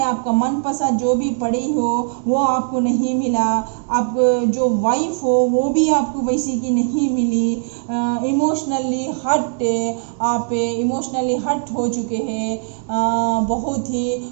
आपका मनपसंद जो भी पढ़ी हो वो आपको नहीं मिला, आप जो वाइफ हो वो भी आपको वैसी की नहीं मिली। इमोशनली हट, आप इमोशनली हट हो चुके हैं। बहुत ही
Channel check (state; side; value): silent; left; digital silence